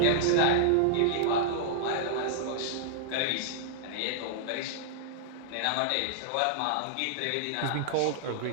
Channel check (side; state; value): both; different; correlation -0.02